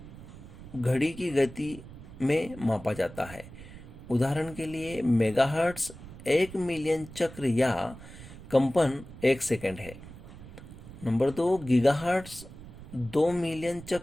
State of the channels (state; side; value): noise; right; rumble, 16 dB below the sound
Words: घड़ी की गति में मापा जाता है। उदाहरण के लिए मेगाहर्ट्ज़ 1 मिलियन चक्र या कंपन 1 सेकंड है। नंबर 2 गीगाहर्ट्ज़ 2 मिलियन